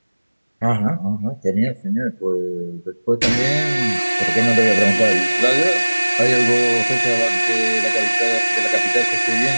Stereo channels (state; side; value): inverted; both; correlation -1.00